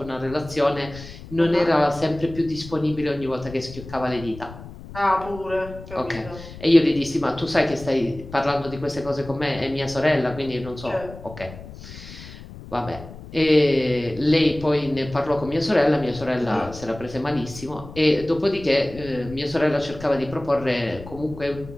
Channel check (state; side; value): noise; left; rumble, 15 dB below the sound